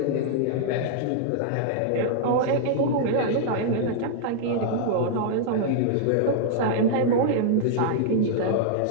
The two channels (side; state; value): both; different; correlation -0.01